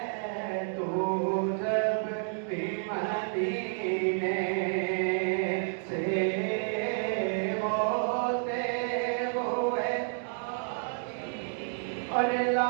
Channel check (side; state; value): left; silent; digital silence